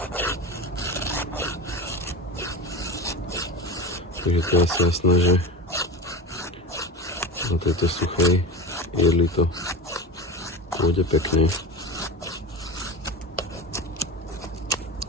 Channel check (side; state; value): both; normal; correlation 0.26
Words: Takže to je asi jasné, že na tejto suchej jedli to pôjde pekne.